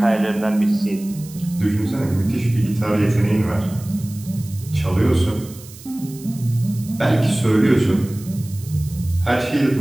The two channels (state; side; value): noise; right; hiss, 19 dB below the sound